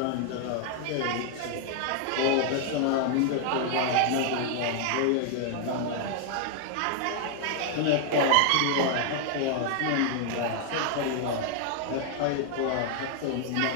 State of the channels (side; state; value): both; different; correlation 0.00